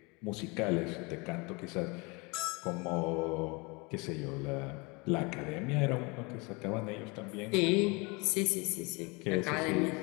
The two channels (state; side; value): quieter; right; 28.1 dB